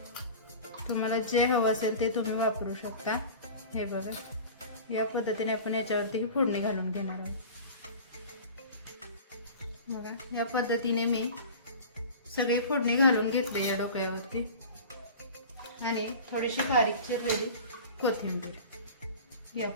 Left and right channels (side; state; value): both; inverted; correlation -0.37